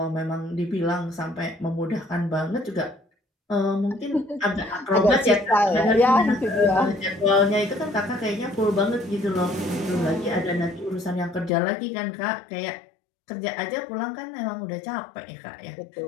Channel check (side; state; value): right; drops out; at 11.5 s